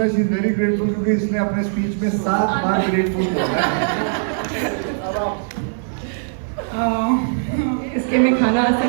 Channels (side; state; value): left; silent; digital silence